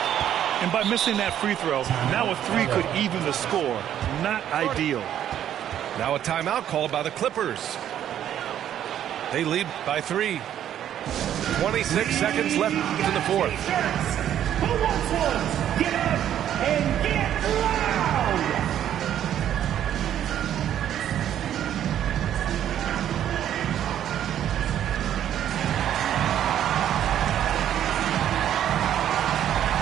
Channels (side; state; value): left; quieter; 10.7 dB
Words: And by missing that free throw, now a 3 could even the score. Not ideal. Now a timeout called by the Clippers. They lead by 3. 26 seconds left in the 4th. Who wants one? Get up and get loud.